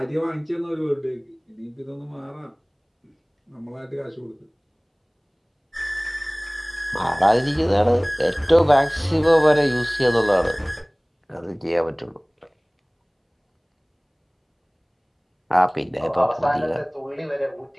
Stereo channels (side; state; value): both; identical; correlation 1.00